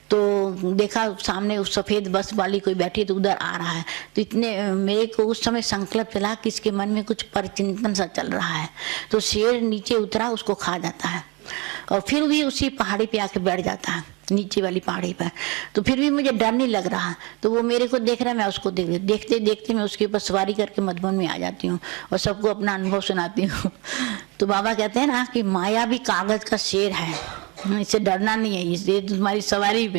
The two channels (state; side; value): quieter; left; 27.9 dB